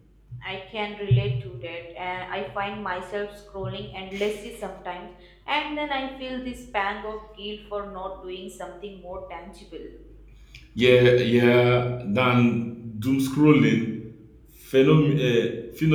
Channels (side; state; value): both; identical; correlation 1.00